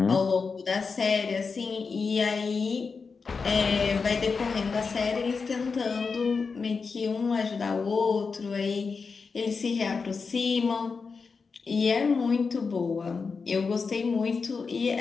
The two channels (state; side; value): quieter; right; 4.9 dB